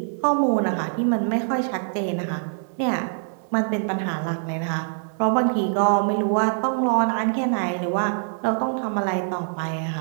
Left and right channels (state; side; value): silent; left; 57 dB below the other